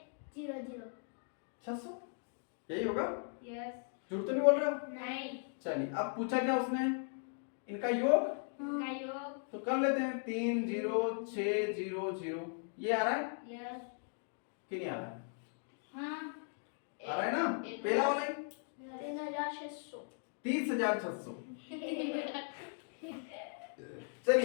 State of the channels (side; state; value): right; silent; 52 dB below the other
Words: 600 यही होगा? यस झूठ तो नहीं बोल रहे हो? नहीं चलिए अब पूछा क्या उसने, इनका योग का योग तो कर लेते हैं। 3 0 6 0 0 ये आ रहा है यस कि नहीं आ रहा है? हाँ आ रहा है ना, पहला वाला ही 3600 30,600।